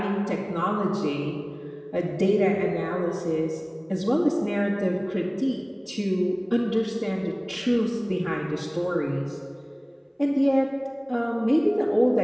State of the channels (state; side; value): identical; both; correlation 1.00